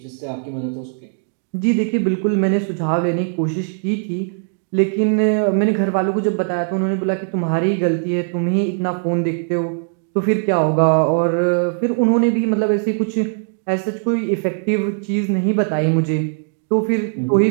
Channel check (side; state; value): left; silent; 63 dB below the other